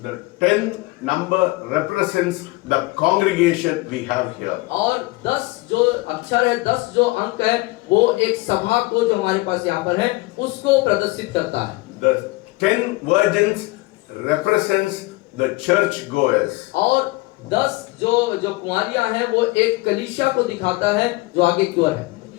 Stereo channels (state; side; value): quieter; right; 21.9 dB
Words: the 10 number represents the congregation we have here. और 10 जो अक्षर है, 10 जो अंक है, वो एक सभा को जो हमारे पास यहाँ पर है उसको प्रदर्शित करता है। The 10 virgins represents the church goers. और 10 जो कुंवारियां हैं वो एक कलीसिया को दिखाता है जो आगे की ओर है।